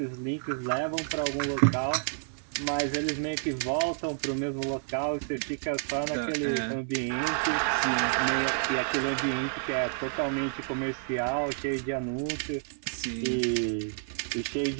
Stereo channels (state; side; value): silent; left; digital silence